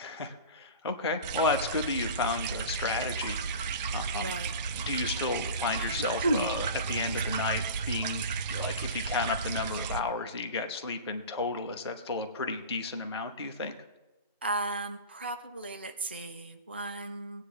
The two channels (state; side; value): inverted; both; correlation -0.33